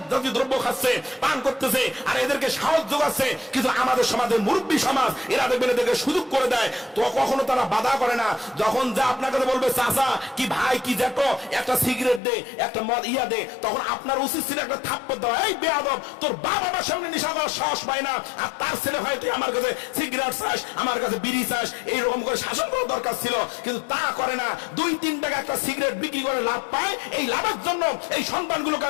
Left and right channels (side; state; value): right; drops out; at 12.2 s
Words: জাতীয় দ্রব্য খাচ্ছে, পান করতেছে, আর এদেরকে সাহস যোগাচ্ছে। কিন্তু আমাদের সমাজের মুরব্বী সমাজ এরা দেখবেন এদেরকে সুযোগ করে দেয়, তো কখনো তারা বাধা করে না। যখন যা আপনার কাছে বলবে চাচা কি ভাই কি জ্যাঠো একটা সিগারেট দে, একটা মদ ইয়া দে, তখন আপনার উচিত ছিল একটা থাপ্পড় দেওয়া, এই বেয়াদব তোর বাবা আমার সামনে নেশা করার সাহস পায় না, আর তার ছেলে হয় তুই আমার কাছে সিগারেট চাস, আমার কাছে বিড়ি চাস, এইরকম করে শাসন করার দরকার ছিল। কিন্তু তা করে না, 2-3 টাকা একটা সিগারেট বিক্রি করে লাভ পায়, এই লাভের জন্য এই সন্তানগুলোকে